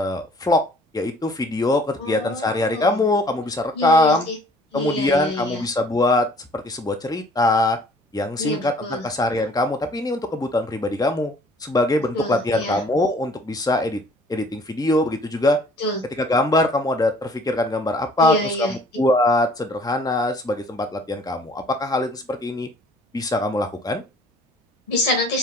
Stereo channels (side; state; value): both; normal; correlation 0.55